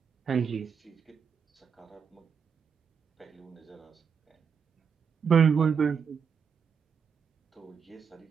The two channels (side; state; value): left; quieter; 6.6 dB